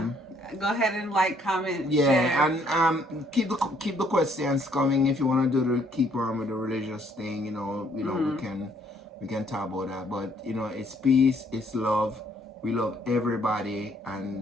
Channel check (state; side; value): normal; both; correlation 0.66